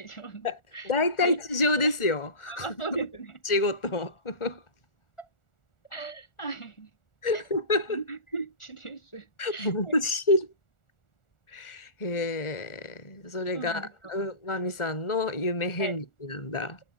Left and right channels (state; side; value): late; right; 1.4 ms